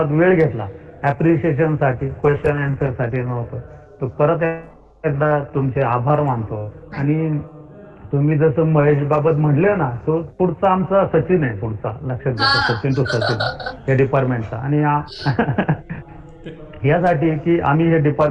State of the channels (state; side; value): identical; both; correlation 1.00